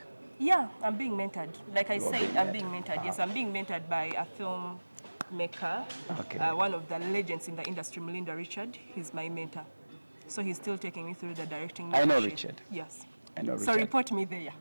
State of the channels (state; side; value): inverted; both; correlation -1.00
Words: Yeah, I'm being mentored. Like I You are said, being I'm being mentored. mentored. Yes, I'm being mentored by a filmmaker, Okay. one of the legends in the industry, Melinda Richard. He's my mentor. So he's still taking me through the directing. I know mentorship. Richard. Yes. I know So Richard. report me there.